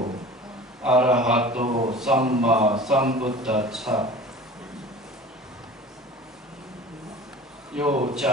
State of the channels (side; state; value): both; normal; correlation 0.40